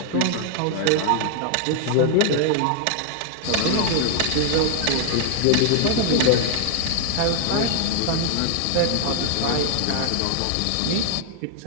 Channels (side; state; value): both; different; correlation 0.00